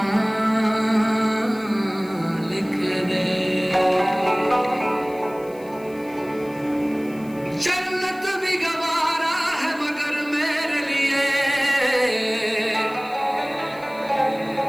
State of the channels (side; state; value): left; noise; hiss, 25 dB below the sound